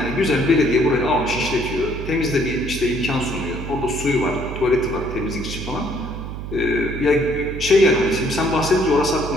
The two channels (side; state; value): right; noise; hum, 8 dB below the sound